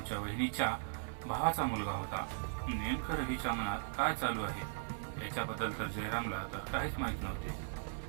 वहिनीच्या भावाचा मुलगा होता. नेमकं रवीच्या मनात काय चालू आहे याच्याबद्दल तर जयरामला तर काहीच माहीत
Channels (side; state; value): left; silent; digital silence